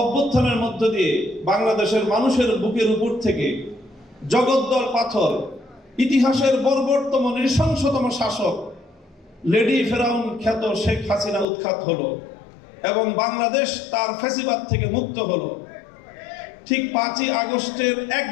অভ্যুত্থানের মধ্য দিয়ে বাংলাদেশের মানুষের বুকের উপর থেকে জগদ্দল পাথর, ইতিহাসের বর্বরতম নৃশংসতম শাসক লেডি ফেরাউন খ্যাত শেখ হাসিনা উৎখাত হলো এবং বাংলাদেশ তার ফ্যাসিবাদ থেকে মুক্ত হলো, ঠিক 5ই আগস্টের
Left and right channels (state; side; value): drops out; right; at 11.5 s